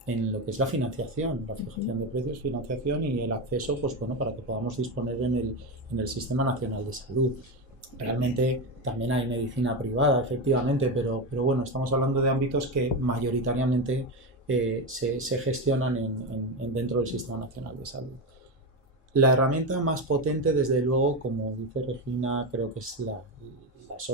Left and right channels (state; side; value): normal; both; correlation 0.15